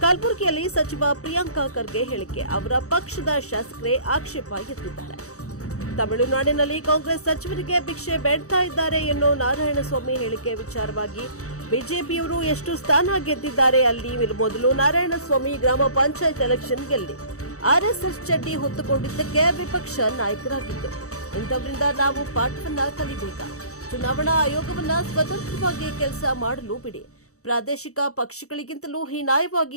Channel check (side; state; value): right; late; 0.65 ms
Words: ಕಲಬುರಗಿಯಲ್ಲಿ ಸಚಿವ ಪ್ರಿಯಾಂಕ ಖರ್ಗೆ ಹೇಳಿಕೆ. ಅವರ ಪಕ್ಷದ ಶಾಸಕರೇ ಆಕ್ಷೇಪ ಎತ್ತಿದ್ದಾರೆ. ತಮಿಳುನಾಡಿನಲ್ಲಿ ಕಾಂಗ್ರೆಸ್ ಸಚಿವರಿಗೆ ಭಿಕ್ಷೆ ಬೇಡ್ತಾ ಇದ್ದಾರೆ ಎನ್ನೋ ನಾರಾಯಣಸ್ವಾಮಿ ಹೇಳಿಕೆ ವಿಚಾರವಾಗಿ ಬಿಜೆಪಿಯವರು ಎಷ್ಟು ಸ್ಥಾನ ಗೆದ್ದಿದ್ದಾರೆ ಅಲ್ಲಿ ಮೊದಲು ನಾರಾಯಣಸ್ವಾಮಿ ಗ್ರಾಮ ಪಂಚಾಯತ್ ಎಲೆಕ್ಷನ್ ಗೆಲ್ಲಿ ಆರ್ಎಸ್ಎಸ್ ಚಡ್ಡಿ ಹೊತ್ತುಕೊಂಡಿದ್ದಕ್ಕೆ ವಿಪಕ್ಷ ನಾಯಕರಾಗಿದ್ದು, ಇಂಥವರಿಂದ ನಾವು ಪಾಠವನ್ನ ಕಲಿಬೇಕಾ? ಚುನಾವಣಾ ಆಯೋಗವನ್ನ ಸ್ವತಂತ್ರವಾಗಿ ಕೆಲಸ ಮಾಡಲು ಬಿಡಿ. ಪ್ರಾದೇಶಿಕ ಪಕ್ಷಗಳಿಗಿಂತಲೂ